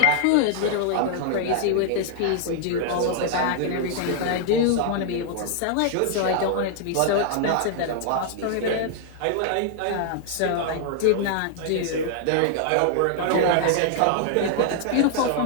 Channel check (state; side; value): different; both; correlation 0.00